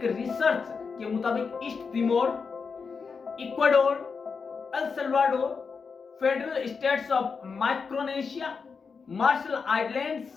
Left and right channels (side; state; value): right; quieter; 5.3 dB